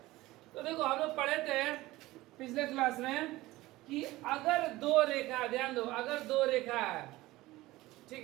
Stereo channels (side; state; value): left; quieter; 18.4 dB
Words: तो देखो हम लोग पढ़े थे पिछले क्लास में कि अगर दो रेखा, ध्यान दो, अगर दो रेखा है, ठीक